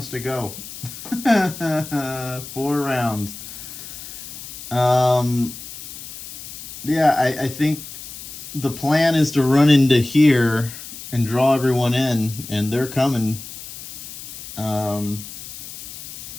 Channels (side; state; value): left; noise; hiss, 12 dB below the sound